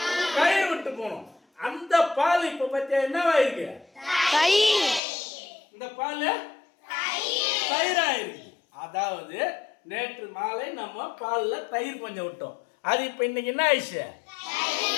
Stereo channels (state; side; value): drops out; right; at 5.0 s